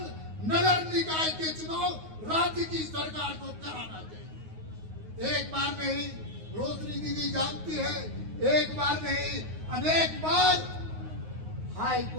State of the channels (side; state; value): left; late; 9.4 ms